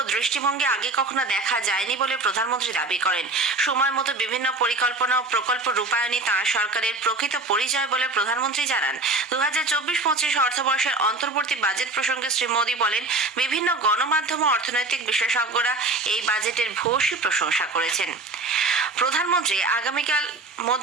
দৃষ্টিভঙ্গি আগে কখনো দেখা যায়নি বলে প্রধানমন্ত্রী দাবি করেন। সময় মতো বিভিন্ন পরিকল্পনা ও প্রকল্প রূপায়ণই তাঁর সরকারের প্রকৃত পরিচয় বলে প্রধানমন্ত্রী জানান। 2024-25 অর্থবর্ষের অন্তর্বর্তী বাজেট প্রসঙ্গে শ্রী মোদী বলেন, বিভিন্ন গণমাধ্যম ও অর্থনৈতিক বিশেষজ্ঞরা এই বাজেটের ভূয়সী প্রশংসা করেছেন। প্রধানমন্ত্রী আগামীকাল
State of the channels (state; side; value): quieter; left; 3.0 dB